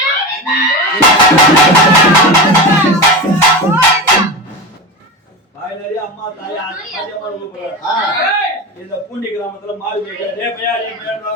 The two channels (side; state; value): both; normal; correlation 0.24